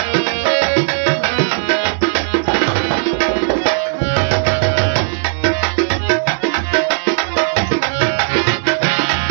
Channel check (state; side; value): silent; left; digital silence